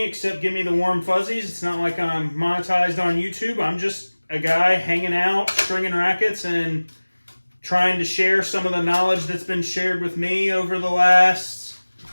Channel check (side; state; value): both; inverted; correlation -1.00